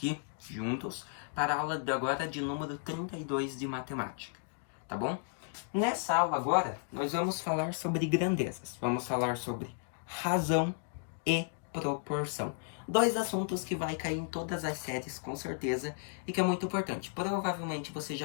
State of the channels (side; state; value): right; silent; 55 dB below the other